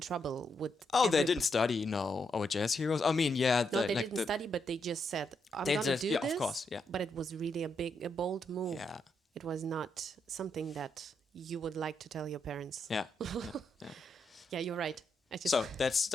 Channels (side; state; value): both; normal; correlation 0.80